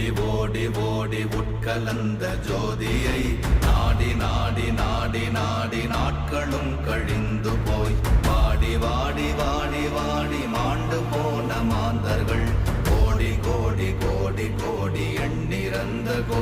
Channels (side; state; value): both; identical; correlation 1.00